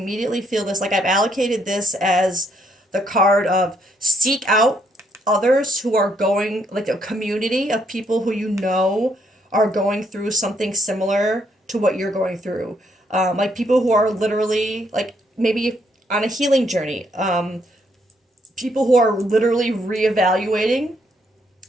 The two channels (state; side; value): normal; both; correlation 0.72